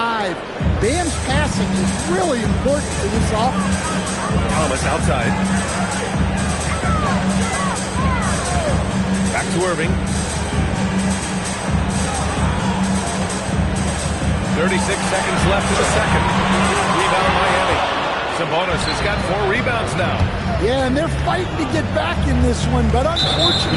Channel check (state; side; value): identical; both; correlation 1.00